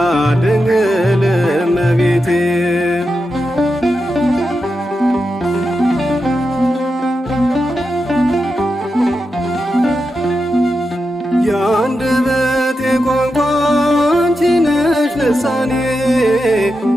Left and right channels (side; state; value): both; normal; correlation 0.88